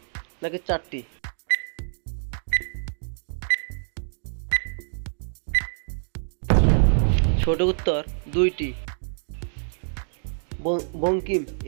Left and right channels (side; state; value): left; silent; digital silence